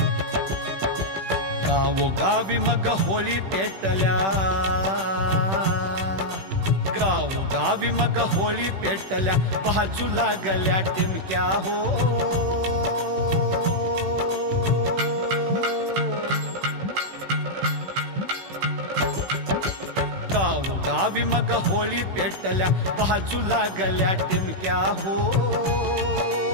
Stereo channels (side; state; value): left; late; 16 ms